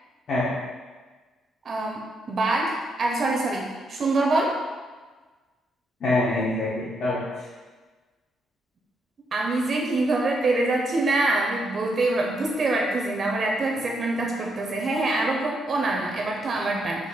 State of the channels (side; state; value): both; normal; correlation 0.78